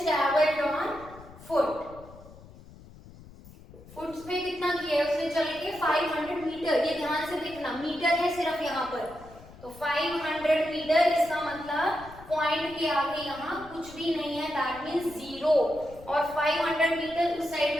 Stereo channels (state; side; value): noise; left; rumble, 20 dB below the sound